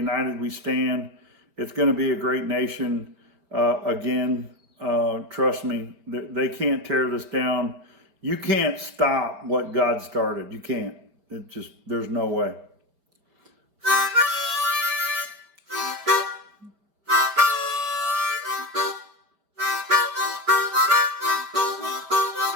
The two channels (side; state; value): left; late; 5.1 ms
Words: we stand. It's going to be a great nation again. Trust me, they can't tear this down. You can't stop what God started. You can't. There's no way.